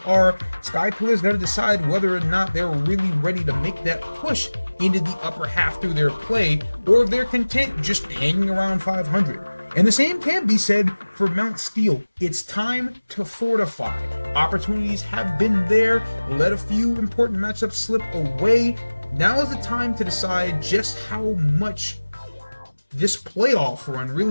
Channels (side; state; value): both; inverted; correlation -1.00